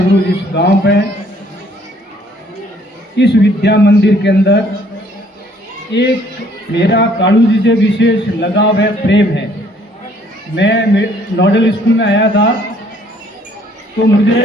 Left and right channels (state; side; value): normal; both; correlation 0.62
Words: इस गांव पे इस विद्या मंदिर के अंदर एक मेरा कालू जी से विशेष लगाव है, प्रेम है। मैं नोडल स्कूल में आया था तो मुझे